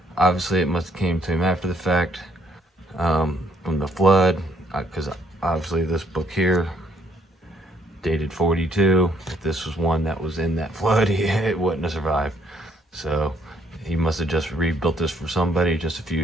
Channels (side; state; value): both; normal; correlation 0.68